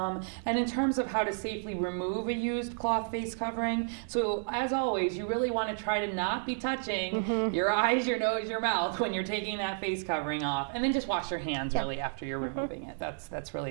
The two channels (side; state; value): left; silent; digital silence